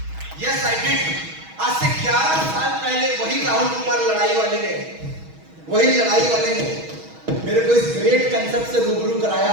वही लड़ाई वाले ने मेरे को इस ग्रेट कंसेप्ट से रूबरू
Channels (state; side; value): late; left; 6.3 ms